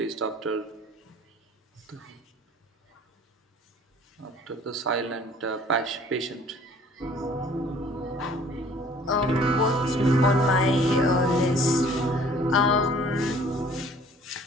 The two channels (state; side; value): normal; both; correlation 0.53